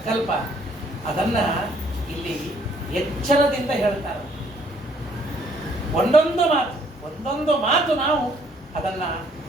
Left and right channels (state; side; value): normal; both; correlation 0.64